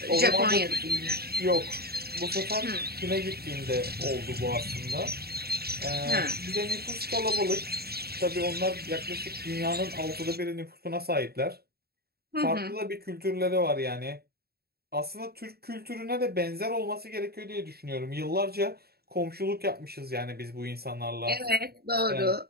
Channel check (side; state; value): left; late; 0.46 ms